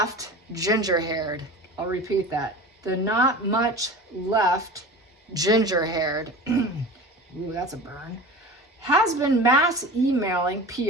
ginger-haired. I'll repeat that. The not much left ginger-haired. Ooh, that's a burn. Has been mass emailing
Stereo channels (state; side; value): normal; both; correlation 0.34